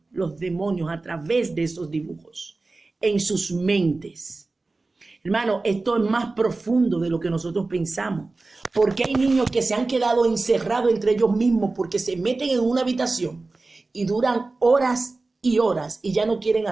los demonios a través de esos dibujos en sus mentes. Hermano, esto es más profundo de lo que nosotros pensamos. Porque hay niños que se han quedado encerrados entre ellos mismos porque se meten en una habitación y duran horas y horas y ya no quieren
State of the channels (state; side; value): quieter; left; 3.4 dB